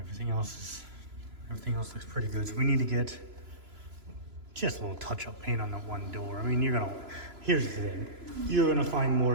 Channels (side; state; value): left; late; 3.0 ms